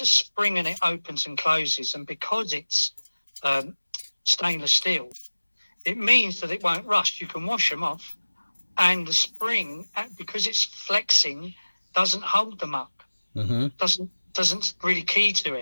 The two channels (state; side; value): inverted; both; correlation -1.00